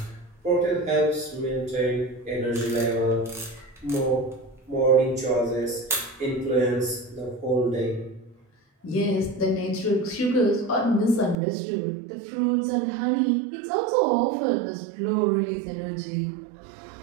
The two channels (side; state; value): left; drops out; at 11.4 s